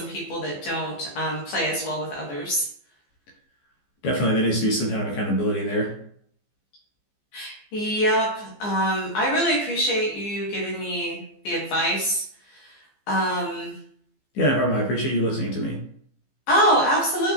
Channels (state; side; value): late; right; 15 ms